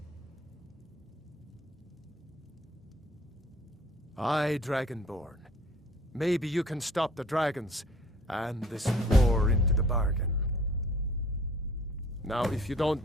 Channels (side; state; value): both; normal; correlation 0.53